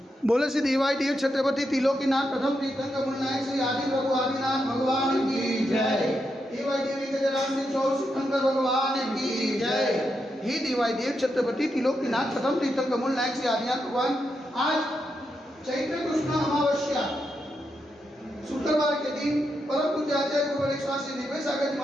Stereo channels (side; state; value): both; normal; correlation 0.84